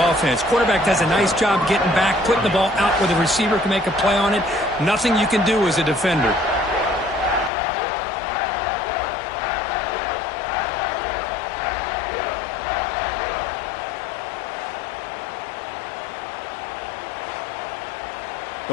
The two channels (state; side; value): drops out; right; at 7.5 s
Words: offense. Quarterback does a nice job getting back, putting the ball out where the receiver can make a play on it. Nothing you can do as a defender.